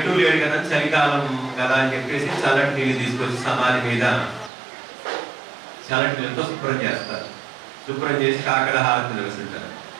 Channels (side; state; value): left; drops out; at 4.5 s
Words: లేడు కదా, చలికాలం కదా అని చెప్పేసి చల్లటి నీళ్ళు తీసుకొచ్చి సమాధి మీద చల్లటి నీళ్ళతో శుభ్రం చేస్తారు. శుభ్రం చేసి కాకర హారతి నిర్వహించారు.